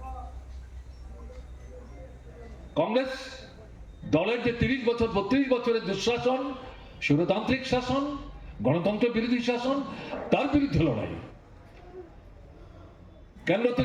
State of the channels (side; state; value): both; identical; correlation 1.00